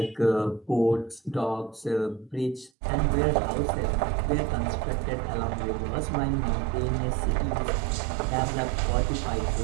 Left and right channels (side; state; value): left; drops out; at 2.7 s